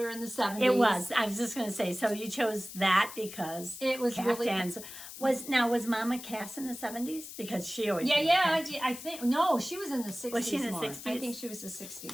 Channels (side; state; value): left; noise; hiss, 12 dB below the sound